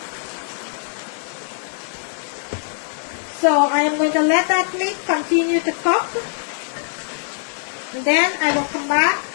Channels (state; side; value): silent; right; 63 dB below the other